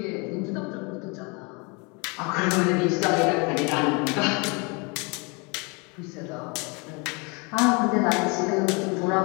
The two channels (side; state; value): right; quieter; 30.4 dB